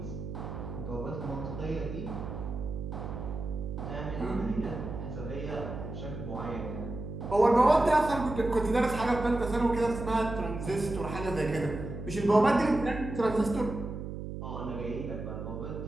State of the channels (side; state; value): right; noise; hum, 7 dB below the sound